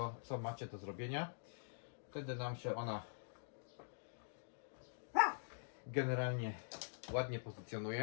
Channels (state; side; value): silent; right; digital silence